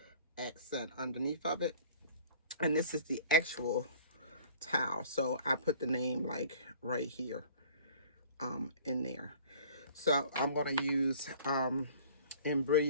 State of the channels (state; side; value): inverted; both; correlation -0.48